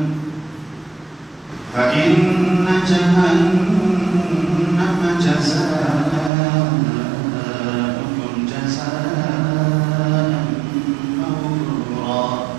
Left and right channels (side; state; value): left; drops out; at 6.3 s